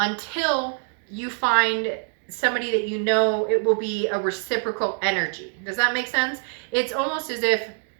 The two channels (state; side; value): silent; left; 59 dB below the other